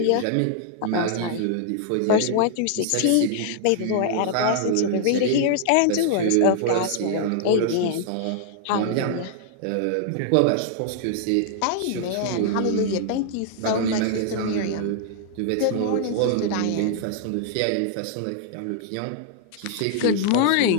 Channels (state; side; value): different; both; correlation -0.01